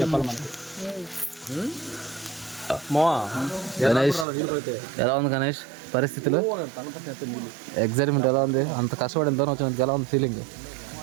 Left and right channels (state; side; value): drops out; left; at 4.2 s